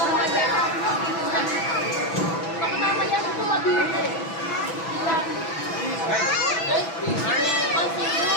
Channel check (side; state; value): right; late; 6.0 ms